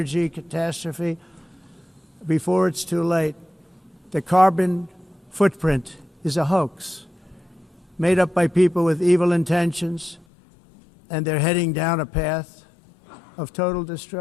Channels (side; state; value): right; drops out; at 10.2 s